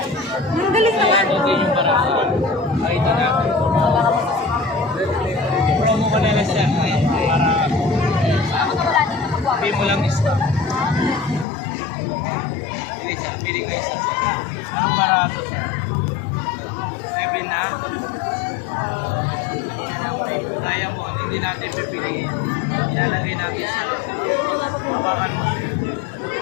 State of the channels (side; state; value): right; drops out; at 11.5 s